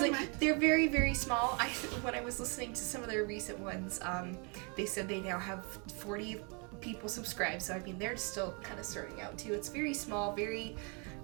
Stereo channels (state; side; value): quieter; left; 33.9 dB